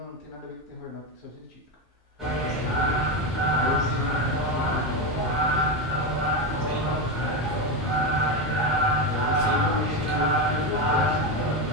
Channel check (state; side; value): normal; both; correlation 0.13